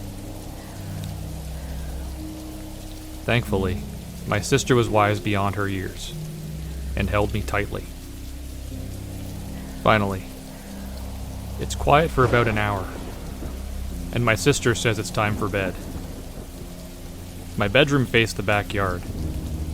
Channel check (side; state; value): both; identical; correlation 1.00